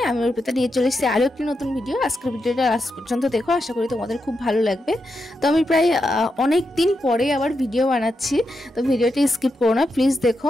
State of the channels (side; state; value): both; normal; correlation 0.85